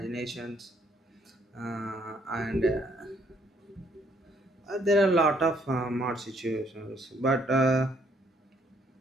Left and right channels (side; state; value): both; normal; correlation 0.67